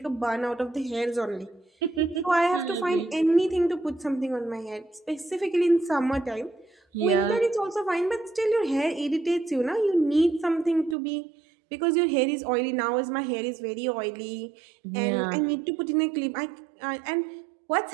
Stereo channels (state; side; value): drops out; left; at 11.0 s